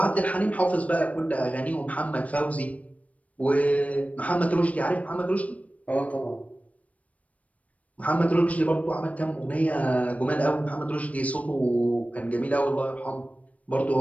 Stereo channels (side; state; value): right; late; 0.067 ms